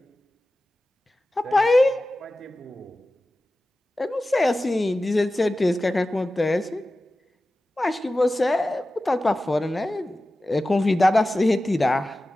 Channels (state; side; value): normal; both; correlation 0.95